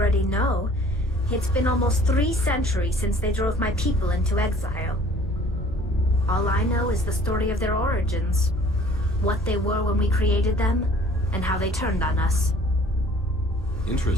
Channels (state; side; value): normal; both; correlation 0.53